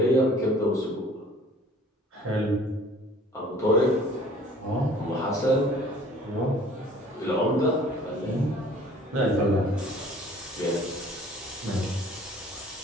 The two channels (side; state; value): both; normal; correlation 0.52